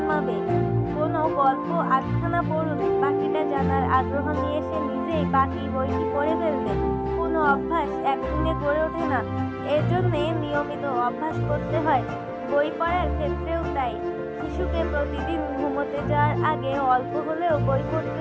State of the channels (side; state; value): both; identical; correlation 1.00